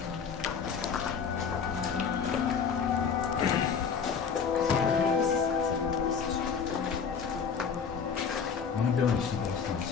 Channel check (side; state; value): right; quieter; 6.4 dB